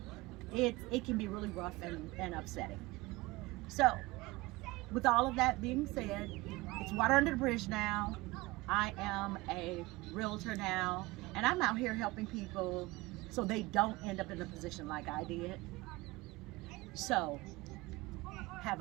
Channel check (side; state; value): left; quieter; 21.7 dB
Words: it can be really rough and upsetting. So with all of that being said, it's water under the bridge now. I am a realtor now, and I'm out here helping people so they don't end up in a position like I did. So have